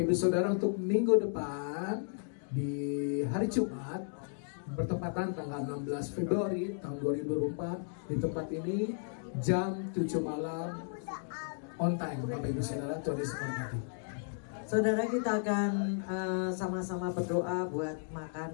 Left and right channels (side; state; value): right; silent; digital silence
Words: Ibu Saudara, untuk minggu depan di hari Jumat bertepatan tanggal 16 Februari tahun 2024 di tempat ini jam 7 malam on time. Bapak Ibu Saudara, Tuhan Yesus memberkati. Saudara, kita akan sama-sama berdoa buat